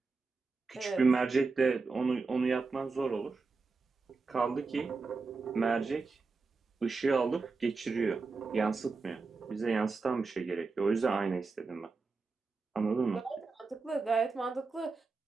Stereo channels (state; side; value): quieter; left; 4.2 dB